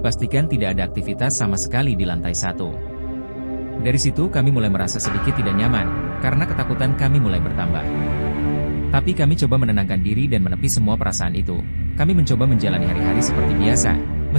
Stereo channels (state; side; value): inverted; both; correlation -1.00